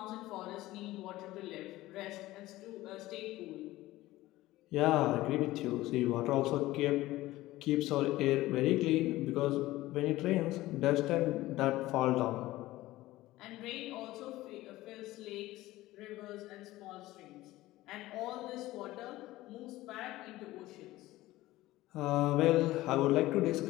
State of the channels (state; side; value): quieter; right; 17.2 dB